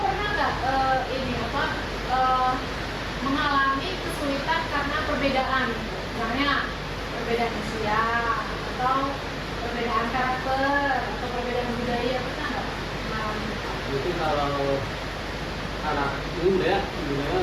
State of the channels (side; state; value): both; identical; correlation 1.00